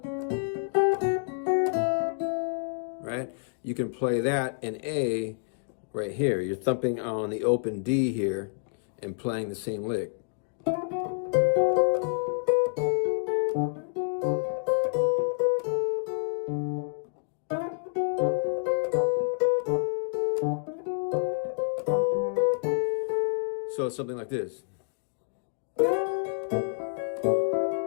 right? You can play that in A right here. You're thumping on the open D here and playing the same lick. So it's something like this.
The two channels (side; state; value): right; silent; digital silence